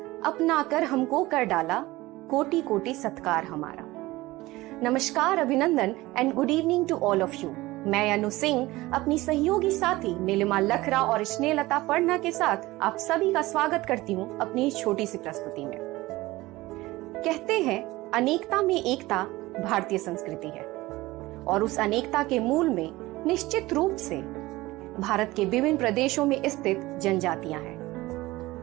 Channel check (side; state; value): left; quieter; 19.2 dB